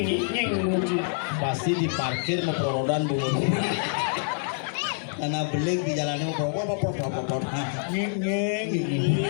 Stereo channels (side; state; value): right; silent; 61 dB below the other